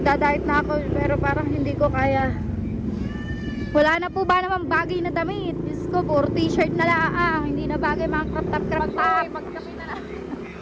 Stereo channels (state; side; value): identical; both; correlation 1.00